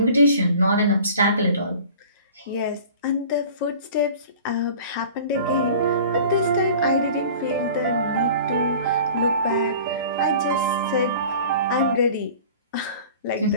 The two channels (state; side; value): inverted; both; correlation -0.43